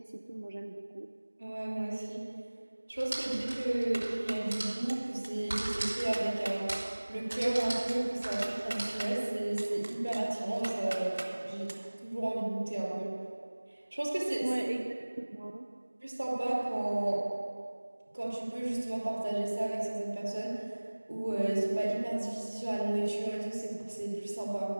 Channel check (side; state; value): both; inverted; correlation -1.00